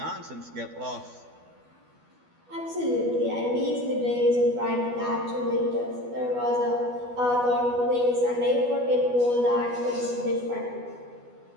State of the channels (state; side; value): late; left; 12 ms